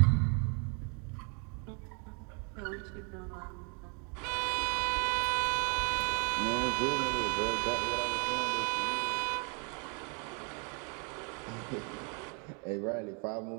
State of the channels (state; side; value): quieter; left; 37.1 dB